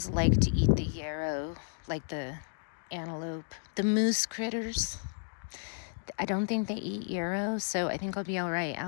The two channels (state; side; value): silent; right; digital silence